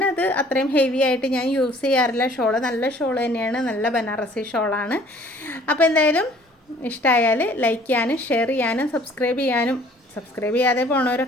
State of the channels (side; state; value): both; normal; correlation 0.55